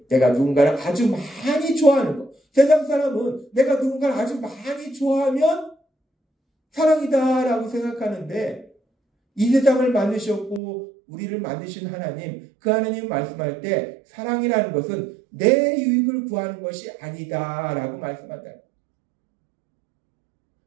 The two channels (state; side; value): drops out; left; at 10.6 s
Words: 내가 누군가를 아주 많이 좋아하는 것. 세상 사람은 내가 누군가를 아주 많이 좋아하면 사랑이다라고 생각하는데 이 세상을 만드셨고 우리를 만드신 하나님, 그 하나님 말씀할 때 사랑이라는 것은 내 유익을 구하는 것이 아니다라고 말씀한다.